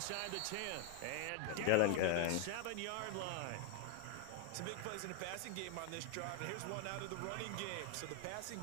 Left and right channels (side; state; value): both; different; correlation 0.01